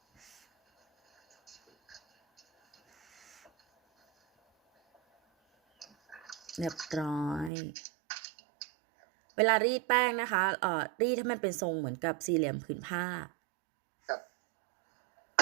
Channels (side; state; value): left; drops out; at 7.5 s